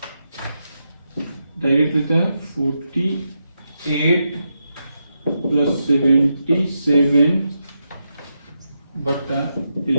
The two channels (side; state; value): both; inverted; correlation -0.85